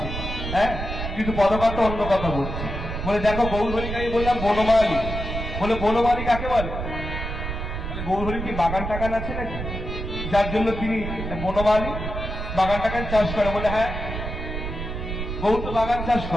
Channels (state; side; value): noise; right; rumble, 5 dB below the sound